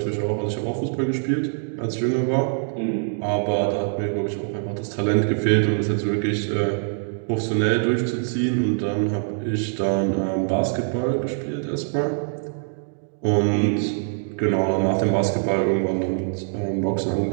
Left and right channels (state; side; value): silent; left; digital silence